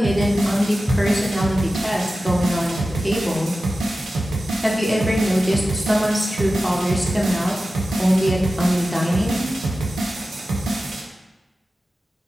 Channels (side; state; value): both; normal; correlation 0.94